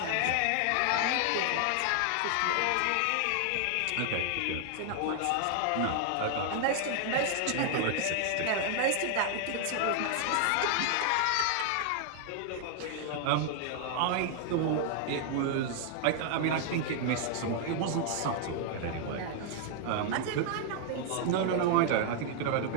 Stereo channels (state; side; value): different; both; correlation 0.00